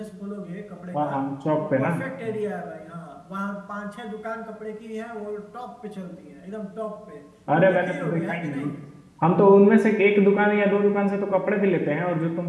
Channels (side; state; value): both; identical; correlation 1.00